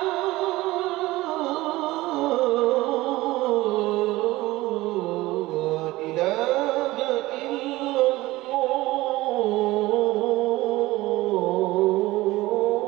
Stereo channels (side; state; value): left; quieter; 18.6 dB